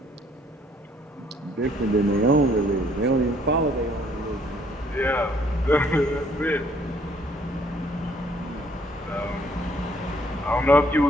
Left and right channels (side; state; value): both; normal; correlation 0.64